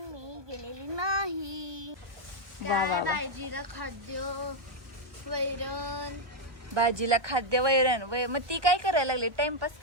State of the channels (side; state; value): left; late; 1.2 ms